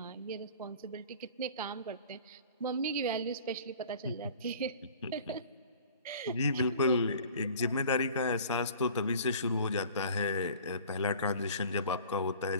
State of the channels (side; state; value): both; inverted; correlation -0.46